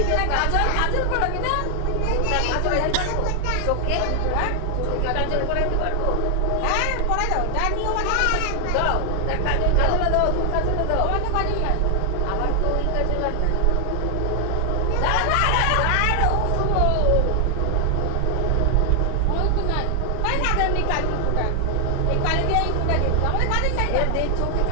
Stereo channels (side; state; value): both; different; correlation 0.00